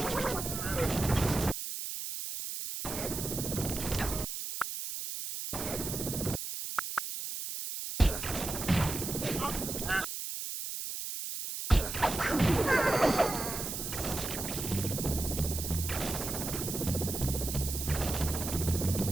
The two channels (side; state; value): right; noise; hiss, 5 dB below the sound